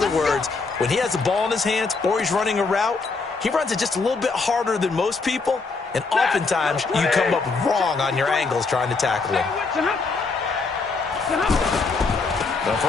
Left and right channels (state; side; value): quieter; right; 4.2 dB